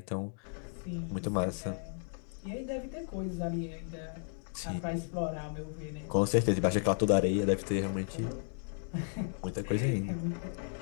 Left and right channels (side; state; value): right; silent; 55 dB below the other